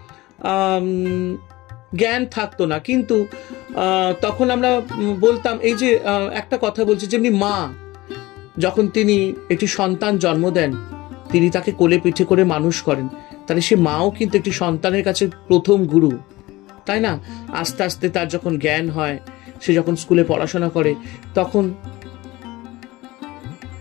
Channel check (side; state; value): right; quieter; 19.6 dB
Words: জ্ঞান থাকতো না, কিন্তু তখন আমরা বলতাম, এই যে একটা কথা বলছি, যেমনি মা যখন তিনি একটি সন্তান জন্ম দেন, তিনি তাকে কোলে পিঠে করে মানুষ করেন, তাহলে সে মাও কিন্তু একটি সন্তানের কাছে প্রথম গুরু, তাই না? আস্তে আস্তে তার যখন জ্ঞান হয়, সে যখন স্কুলে পড়াশোনা করে, তখন